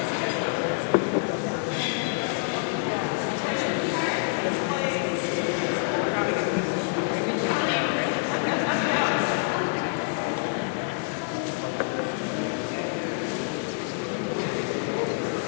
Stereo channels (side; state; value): right; quieter; 38.1 dB